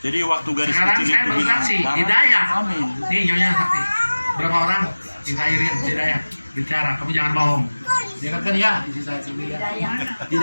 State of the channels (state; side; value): inverted; both; correlation -1.00